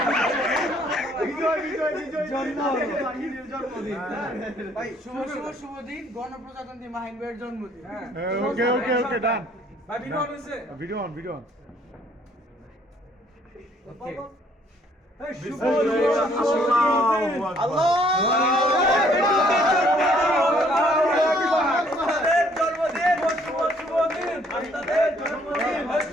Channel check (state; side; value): normal; both; correlation 0.63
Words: ভাই শুভ দিন গণপ্রজাতন্ত্রী মাহিন ভাইয়ের জন্মদিন। ওকে ডান। ভাই ভিডিও অন হইছে ভিডিও অন ওকে